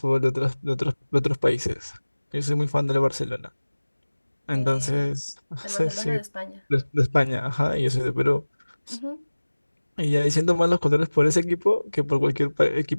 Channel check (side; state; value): both; inverted; correlation -1.00